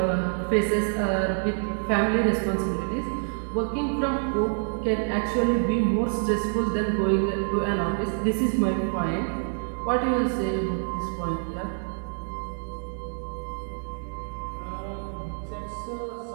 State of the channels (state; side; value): silent; left; digital silence